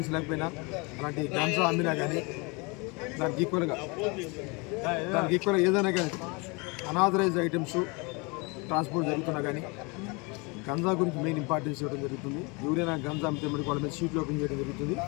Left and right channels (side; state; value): right; quieter; 28.9 dB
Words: లేకపోయినా, అలాంటి గంజా అమ్మినా కానీ దానికి ఈక్వల్గా ఏదైనా కానీ అనాథరైజ్ ఐటమ్స్ ట్రాన్స్పోర్ట్ జరుగుతున్నా కానీ గంజా గురించి మెయిన్ ఇంపార్టెన్స్ ఇవ్వడం జరుగుతుంది. ఎవరైనా గంజా అమ్మితే మనకి వాళ్ళ మీద షీట్లు ఓపెన్ చేయడం జరుగుతుంది.